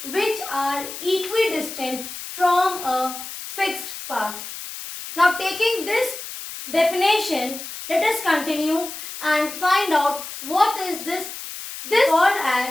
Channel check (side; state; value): left; noise; hiss, 10 dB below the sound